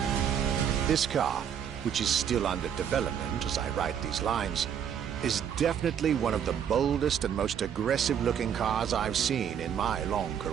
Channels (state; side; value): quieter; left; 8.6 dB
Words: This car, which is still under development as I write these lines, is definitely one of the boldest and most aggressive-looking cars I've seen in my long